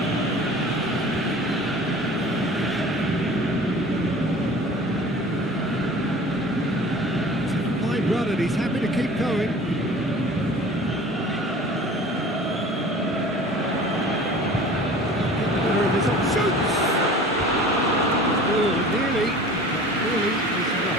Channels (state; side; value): normal; both; correlation 0.43